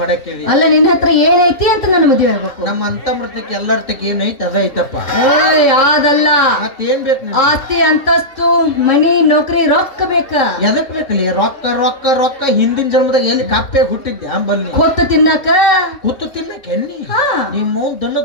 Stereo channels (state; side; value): late; right; 3.7 ms